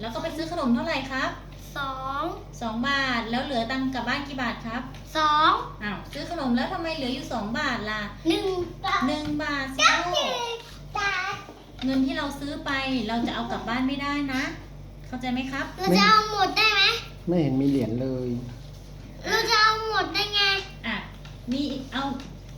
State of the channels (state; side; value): identical; both; correlation 1.00